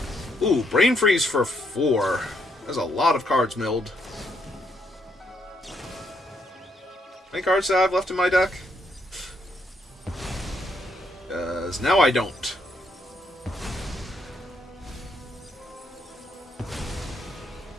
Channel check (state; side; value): normal; both; correlation 0.75